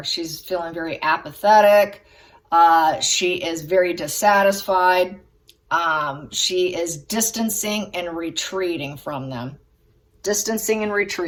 She's feeling very apathetic. She is very dissatisfied. She is distancing and retreating from them. Distancing and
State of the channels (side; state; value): both; identical; correlation 1.00